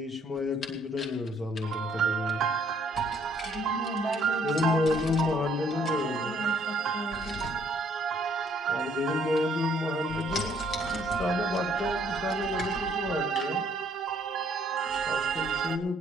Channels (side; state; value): both; normal; correlation 0.65